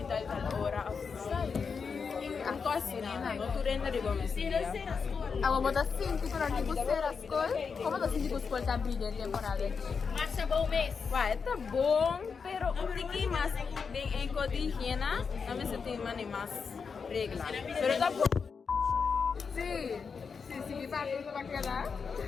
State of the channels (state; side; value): quieter; right; 5.6 dB